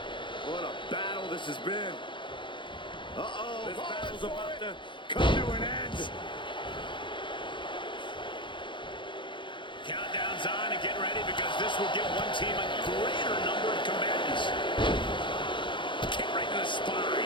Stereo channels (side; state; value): right; late; 0.23 ms